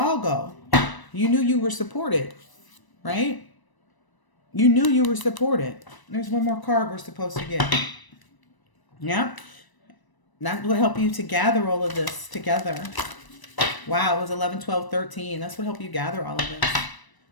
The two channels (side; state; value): right; late; 1.0 ms